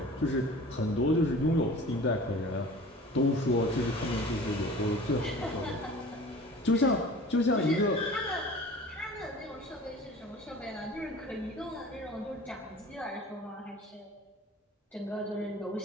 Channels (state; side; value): normal; both; correlation 0.43